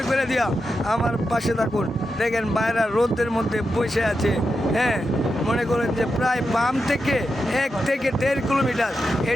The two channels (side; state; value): both; normal; correlation 0.88